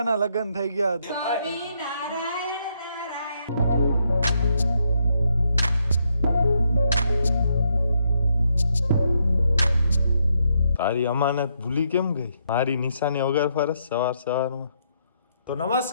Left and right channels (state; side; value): inverted; both; correlation -0.76